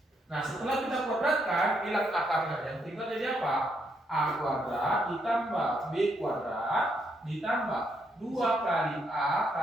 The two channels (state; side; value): normal; both; correlation 0.76